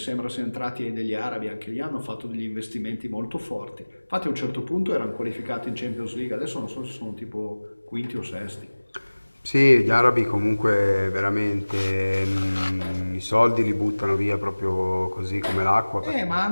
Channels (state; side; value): inverted; both; correlation -1.00